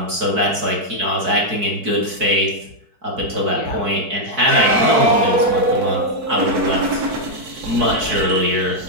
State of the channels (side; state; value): left; late; 4.6 ms